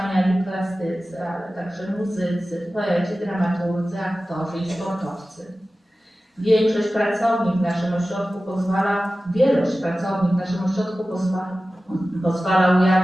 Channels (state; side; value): normal; both; correlation 0.95